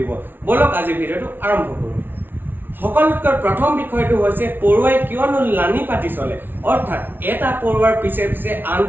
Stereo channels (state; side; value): late; left; 0.097 ms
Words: দিব। বলক আজি ভিডিঅ'টো আৰম্ভ কৰোঁ। সকলোতকৈ প্ৰথম বিষয়টো হৈছে পৰুৱাই কিয়নো লানি পাতি চলে, অৰ্থাৎ এটা পৰুৱাৰ পিছে পিছে